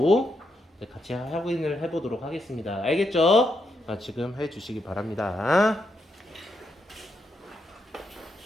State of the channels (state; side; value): normal; both; correlation 0.81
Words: 같이 확인을 해보도록 하겠습니다. 알겠죠? 지금 해주시기 바랍니다.